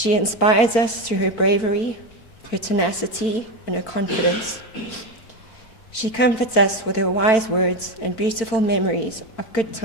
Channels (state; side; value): late; right; 4.5 ms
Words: inspires us through her bravery, her tenacity, and her confidence. She comforts us with her wise words and beautiful memories of good